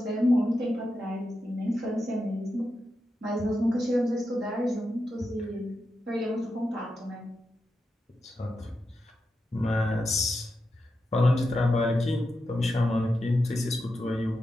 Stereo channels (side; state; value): both; normal; correlation 0.88